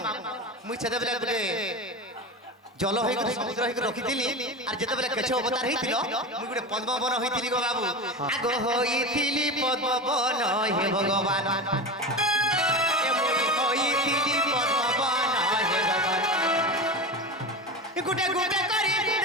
মুই সেতেবেলে গুটে জল হই সমুদ্র হই রখিছিলি আর যেতেবেলে কেছ অবতার হইছিল মুই গুটে পদ্ম বন হইছিলি গো বাবু আগ হইছিলি পদ্ম বন হে ভগবান গুটে গুটে করি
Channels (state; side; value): normal; both; correlation 0.25